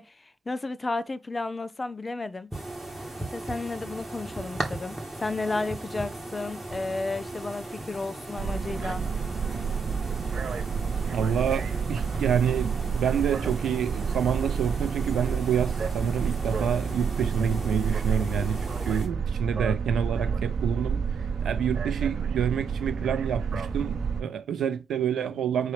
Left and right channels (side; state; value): left; quieter; 5.3 dB